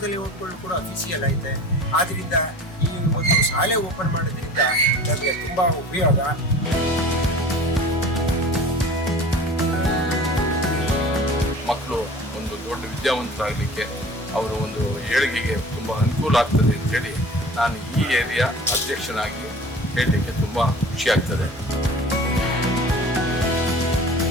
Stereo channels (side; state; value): both; normal; correlation 0.42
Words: ಲೇಔಟ್ಗಳು ಕೂಡ ಅಫಿಸಿಯಲ್ ಐತೆ. ಆದ್ದರಿಂದ ಈ ಒಂದು ಶಾಲೆ ಓಪನ್ ಮಾಡೋದ್ರಿಂದ ನಮಗೆ ತುಂಬ ಉಪಯೋಗ. ಮಕ್ಕಳು ಒಂದು ದೊಡ್ಡ ವಿದ್ಯಾವಂತರಾಗಲಿಕ್ಕೆ ಅವರ ಒಂದು ಏಳಿಗೆಗೆ ತುಂಬ ಅನುಕೂಲ ಆಗ್ತದೆ ಅಂತೇಳಿ ನಾನು ಈ ಏರಿಯಾ ಅಧ್ಯಕ್ಷನಾಗಿ ಹೇಳಲಿಕ್ಕೆ ತುಂಬ ಖುಷಿ ಆಗ್ತದೆ.